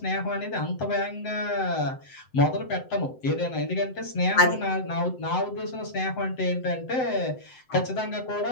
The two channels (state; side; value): late; right; 7.8 ms